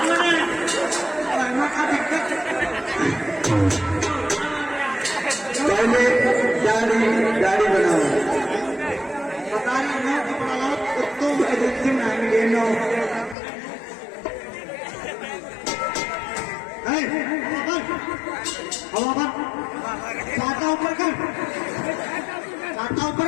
पहले दाढ़ी बनाओ बता रही मैं कपड़ा लाओ कुत्तों एजेंसी में आएंगे नो हवा पर छाता ऊपर कर छाता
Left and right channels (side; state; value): right; drops out; at 13.4 s